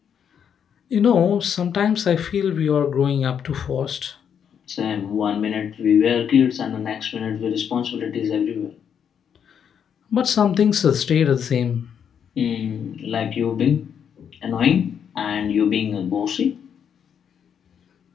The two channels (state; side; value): quieter; right; 8.0 dB